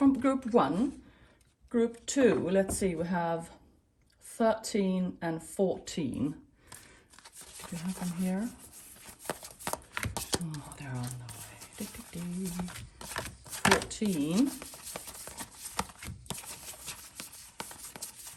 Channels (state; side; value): identical; both; correlation 1.00